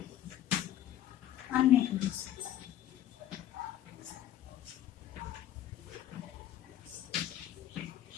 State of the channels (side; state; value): right; quieter; 12.1 dB